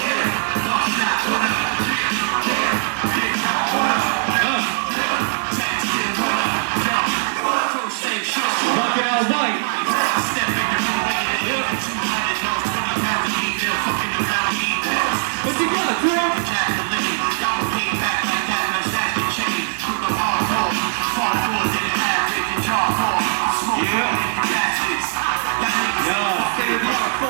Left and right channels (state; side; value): silent; left; digital silence